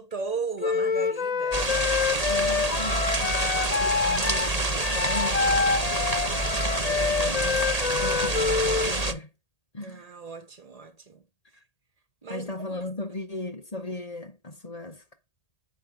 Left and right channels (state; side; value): late; right; 1.8 ms